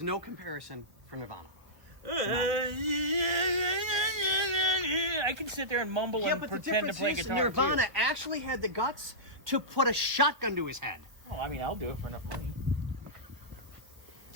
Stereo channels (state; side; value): late; left; 1.5 ms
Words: no comparison for Nirvana. I can sit there and mumble and but the pretend to difference play is guitar Nirvana too. actually had the guts to put a shotgun to his head. Oh, I mean, I'll do it for enough money.